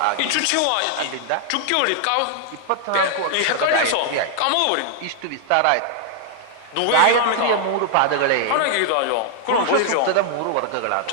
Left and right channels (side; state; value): both; different; correlation 0.00